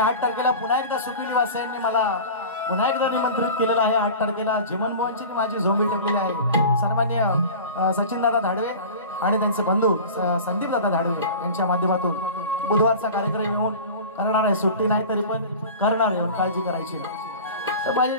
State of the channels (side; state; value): both; inverted; correlation -0.35